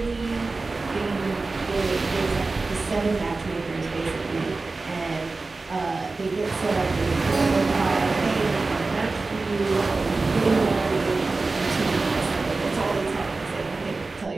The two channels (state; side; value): quieter; left; 3.6 dB